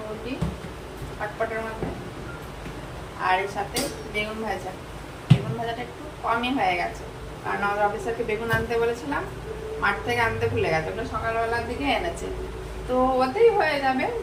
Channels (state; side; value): identical; both; correlation 1.00